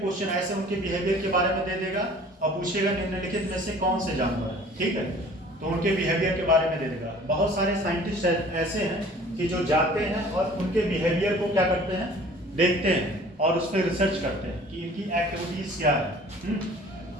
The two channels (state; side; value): normal; both; correlation 0.49